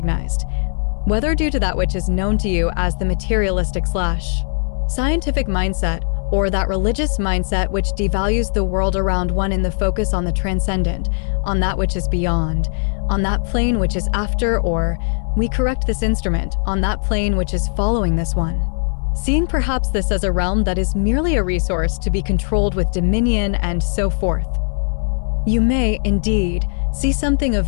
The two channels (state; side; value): silent; right; digital silence